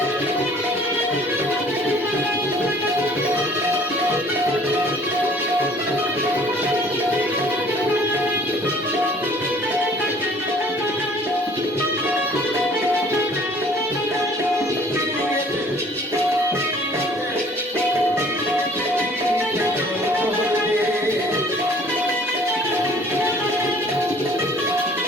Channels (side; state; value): both; normal; correlation 0.54